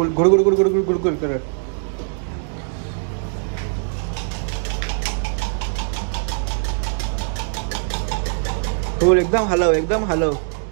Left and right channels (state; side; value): silent; left; digital silence